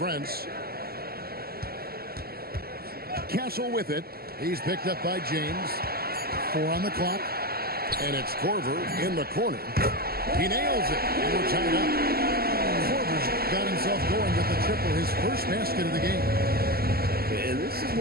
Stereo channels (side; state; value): left; late; 0.45 ms